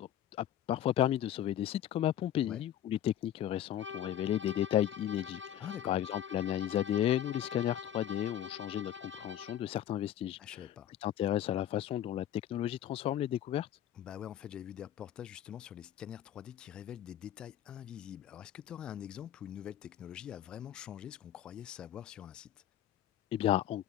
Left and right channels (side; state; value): right; quieter; 11.2 dB